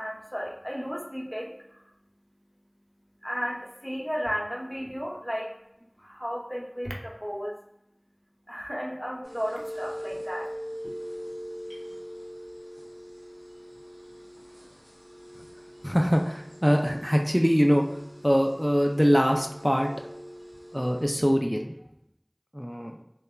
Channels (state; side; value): identical; both; correlation 1.00